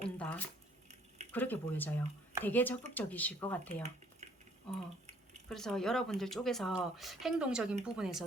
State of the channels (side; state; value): both; normal; correlation 0.61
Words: 그렇게 보여져요. 되게 적극적이실 것 같아요. 그래서 여러분들 쪽에서 행동적인